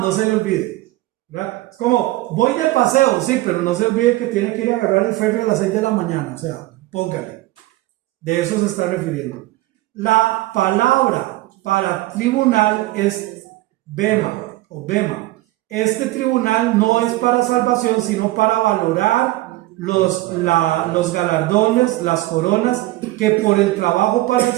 se le olvide, ¿verdad? Es como, voy de paseo, sí, pero no se olvide que tiene que ir a agarrar el ferry a las 6 de la mañana. O sea, póngale. De eso se está refiriendo. La palabra para tribunal es bema o bema. Este tribunal no es para salvación, sino para valorar los galardones, las coronas que por el trabajo para el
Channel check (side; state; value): left; quieter; 18.3 dB